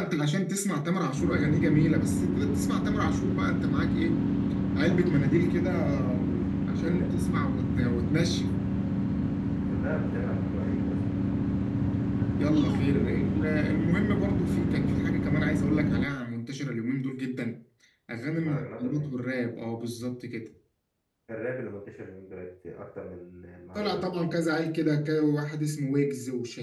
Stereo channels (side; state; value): both; identical; correlation 1.00